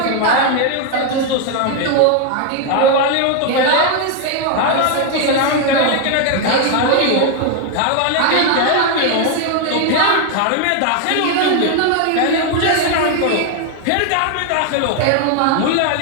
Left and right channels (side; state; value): both; different; correlation 0.01